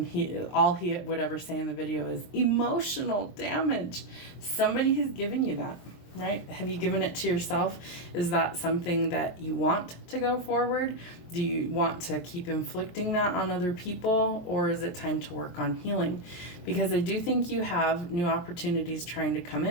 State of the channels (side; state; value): right; late; 23 ms